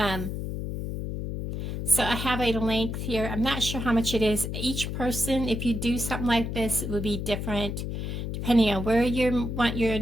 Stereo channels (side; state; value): left; noise; hum, 4 dB below the sound